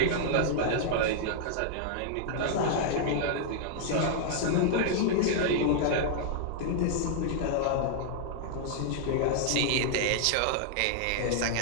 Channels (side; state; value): both; different; correlation -0.01